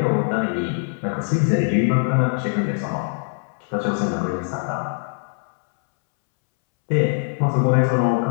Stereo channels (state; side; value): silent; right; 64 dB below the other